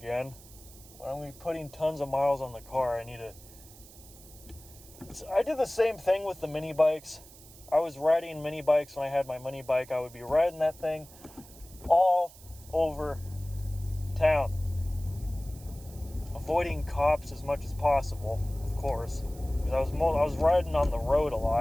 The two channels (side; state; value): right; noise; hiss, 21 dB below the sound